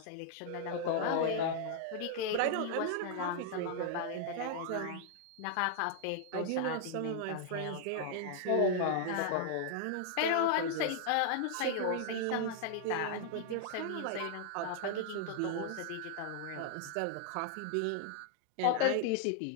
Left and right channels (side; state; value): both; different; correlation 0.00